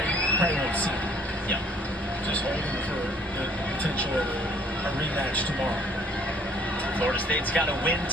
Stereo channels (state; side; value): normal; both; correlation 0.59